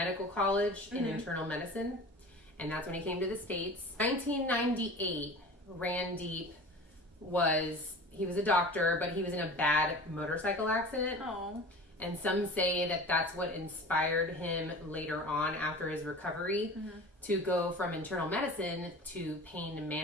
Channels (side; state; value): both; normal; correlation 0.38